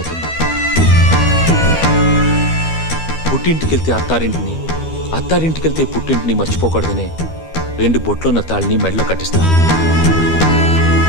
పుట్టింటికెళ్తే అత్తారింటిని, అత్తారింటికెళ్తే పుట్టింటిని మర్చిపోకూడదనే 2 బొట్లున్న తాళ్ళని మెడలో కట్టిస్తారు.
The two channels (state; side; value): late; right; 12 ms